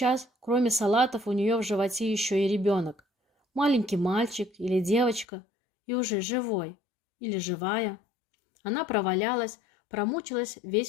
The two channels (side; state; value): right; drops out; at 5.2 s